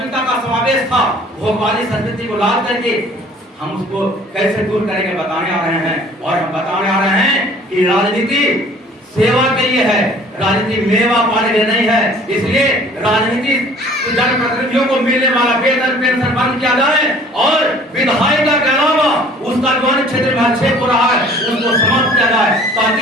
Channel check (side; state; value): both; normal; correlation 0.52